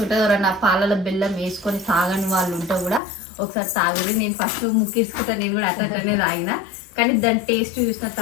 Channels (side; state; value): right; drops out; at 3.0 s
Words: ఉంటుంది. ఎవరన్నా పాలలో బెల్లం వేసుకొని తాగని వాళ్ళు ఉంటే కూడా ఒకసారి తాగుది. నేను ఫస్ట్ ముక్కించుకుంటా, నేను కూడా అట్లనే తాగిన. కానీ దాని టేస్ట్ చూసిన